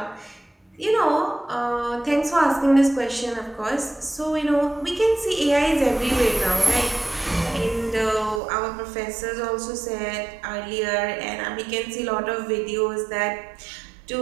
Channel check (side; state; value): left; drops out; at 8.4 s